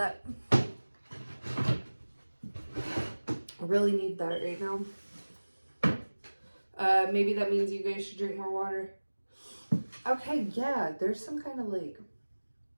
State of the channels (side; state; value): both; inverted; correlation -1.00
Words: I really need that right now. Maybe that means you guys should drink more water. Okay, yeah, there's some kind of like